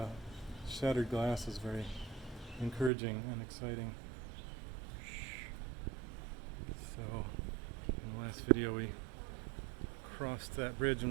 shattered glass is very encouraging and exciting. So, in the last video we crossed that bridge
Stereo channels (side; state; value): left; drops out; at 2.9 s